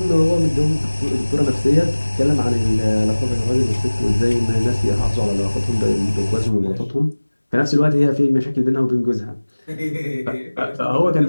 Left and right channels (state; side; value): inverted; both; correlation -1.00